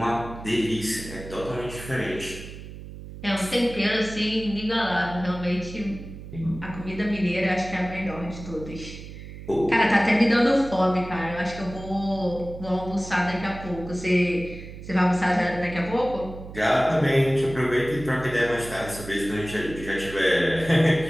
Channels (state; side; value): noise; right; hum, 13 dB below the sound